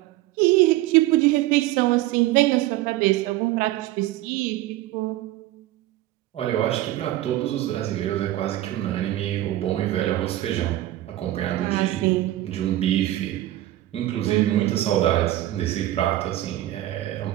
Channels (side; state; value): left; quieter; 15.1 dB